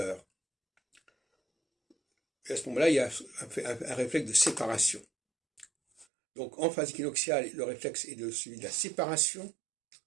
Et à ce moment-là, il y a un réflexe de séparation. Donc en phase équinoxiale, le réflexe est celui de la séparation,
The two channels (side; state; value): left; drops out; at 6.1 s